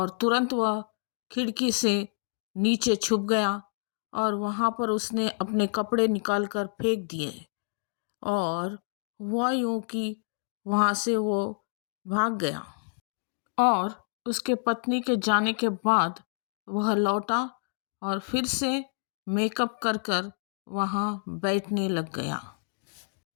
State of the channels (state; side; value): silent; right; digital silence